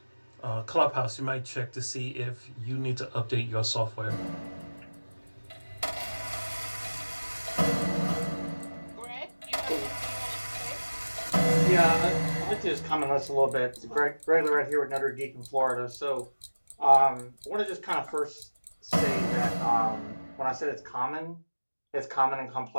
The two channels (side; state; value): both; inverted; correlation -1.00